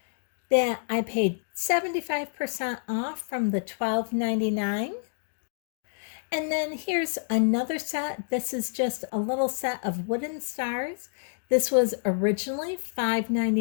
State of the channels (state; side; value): silent; right; digital silence